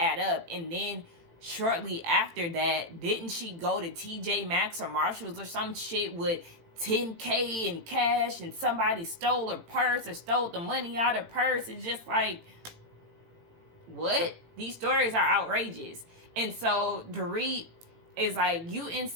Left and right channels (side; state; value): left; late; 18 ms